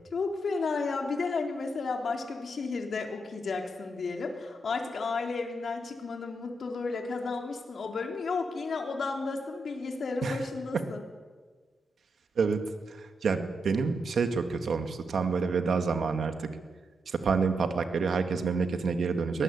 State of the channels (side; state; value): both; normal; correlation 0.82